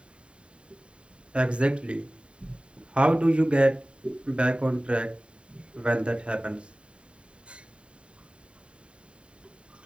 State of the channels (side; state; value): left; late; 0.055 ms